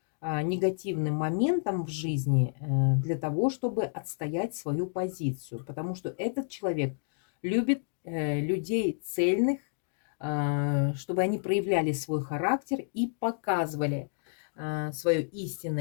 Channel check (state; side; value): silent; right; digital silence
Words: негативным моментам в жизни для того, чтобы отстоять свою позицию. Потому что этот человек любит людей цельных, чтобы они проявляли свой характер и показывали свое